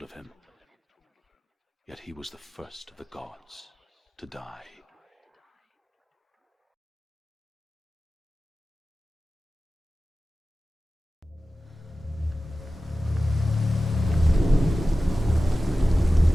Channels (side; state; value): both; normal; correlation 0.96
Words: of him. Yet he was the first of the gods to die.